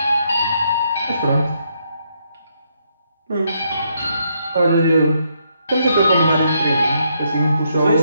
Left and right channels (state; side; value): inverted; both; correlation -0.75